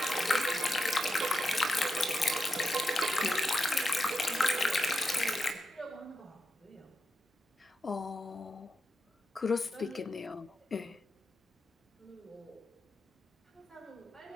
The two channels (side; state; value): both; normal; correlation 0.87